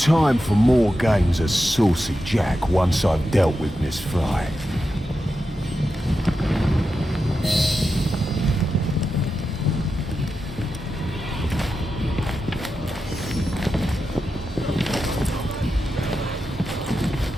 for more games of Saucy Jack once I've dealt with Miss Fry.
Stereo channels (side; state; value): both; normal; correlation 0.89